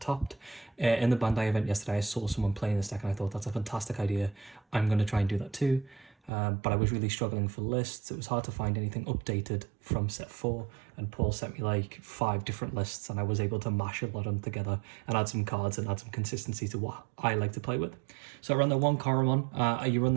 In the Bandai event yesterday, I saw someone playing this deck and I thought that's a fantastic idea. I'm going to try and do that too. But I was really struggling for lists. It was hard to find anything updated from set 4, and Paul sent me like 5 different lists, and I was able to mash a lot of them together and add some cards and add some consistency to what I like to play with. So I run the 1 Coromon. You run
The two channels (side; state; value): left; drops out; at 6.3 s